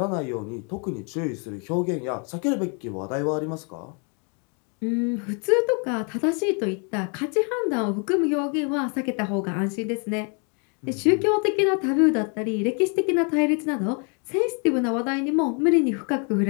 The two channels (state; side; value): quieter; right; 37.1 dB